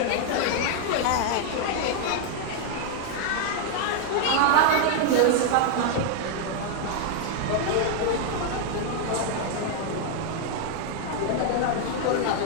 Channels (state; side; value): different; both; correlation 0.00